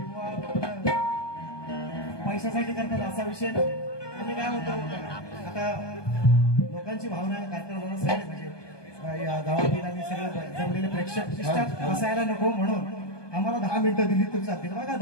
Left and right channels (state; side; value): late; right; 1.2 ms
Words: पैशासाठी करतात असा विषय नाही। आम्ही काय म्हणतो आता लोकांची भावना कार्यक्रमाला सगळे म्हणजे या गावातील आणि सगळे जमलेले प्रेक्षक असायला नको म्हणून आम्हाला 10 मिनिटं दिली तर चालतील। बघा